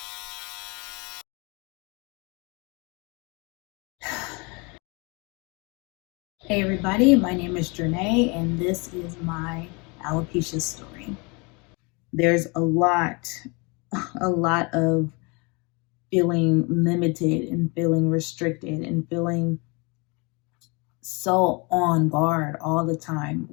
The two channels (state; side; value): quieter; right; 29.6 dB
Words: Hey everybody, my name is Janae and this is my alopecia story. There's a lot of feeling limited and feeling restricted and feeling so on guard all the time,